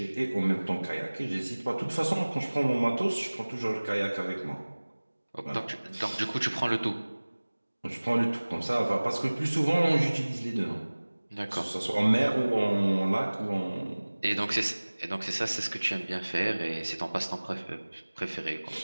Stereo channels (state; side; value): inverted; both; correlation -1.00